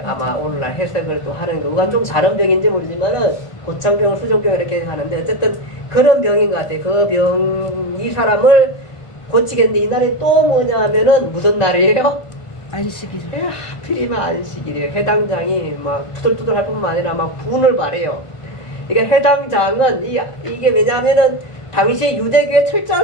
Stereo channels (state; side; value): late; right; 1.5 ms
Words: 아마 오늘날 해석을 또 하는 거. 그건 좀 다른 병인지 모르지만은 고창병, 수종병 이렇게 하는데 어쨌든 그런 병인 것 같아요. 그 병, 이 사람을 고치겠는데 이날이 또 뭐냐 하면은 무슨 날이에요? 안식일. 하필이면 안식일이에요. 해당장이 막 투덜투덜 할 뿐만 아니라 막 분을 발해요. 그러니까 해당장은 이게 왜냐하면은 당시에 유대교에